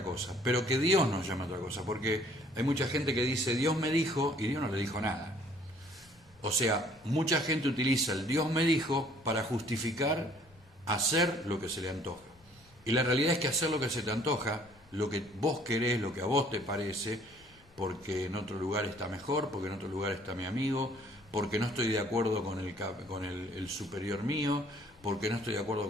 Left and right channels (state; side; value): noise; left; rumble, 29 dB below the sound